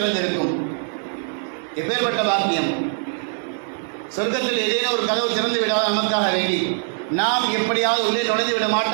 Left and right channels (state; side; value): silent; left; 64 dB below the other